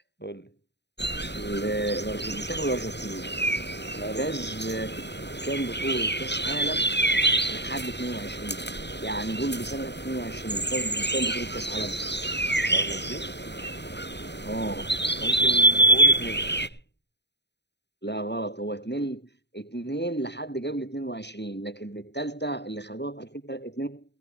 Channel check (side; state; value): right; late; 0.50 ms